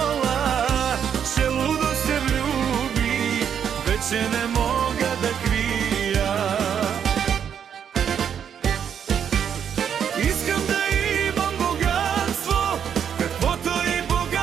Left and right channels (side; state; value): left; quieter; 8.2 dB